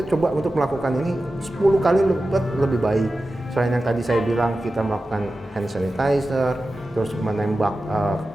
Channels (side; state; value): both; normal; correlation 0.94